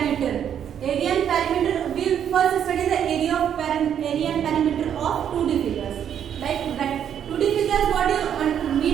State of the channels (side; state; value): left; quieter; 9.1 dB